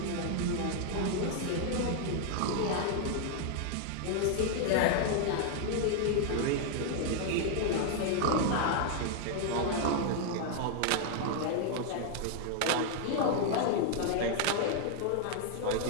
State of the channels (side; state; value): both; different; correlation 0.00